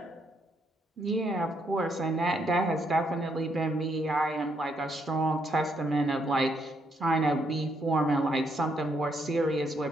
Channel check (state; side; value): normal; both; correlation 0.74